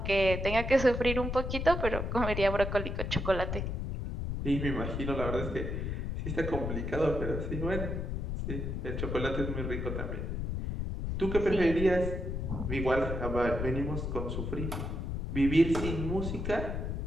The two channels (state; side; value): noise; left; rumble, 3 dB below the sound